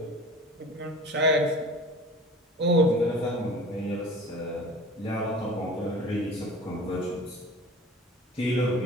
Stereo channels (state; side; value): normal; both; correlation 0.40